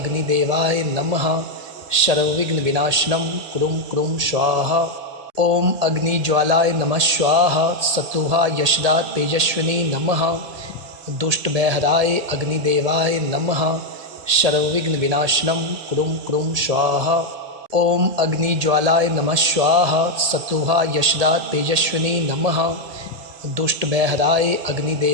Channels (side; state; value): left; late; 1.7 ms